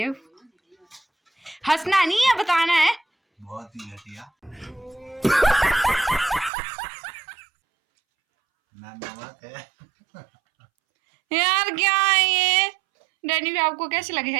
हंसना नहीं है, बताना है। बहुत ही घटिया। नमक है यार, क्या है ये? डैनी भी आपको कैसे लगेगा?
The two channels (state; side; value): drops out; left; at 6.5 s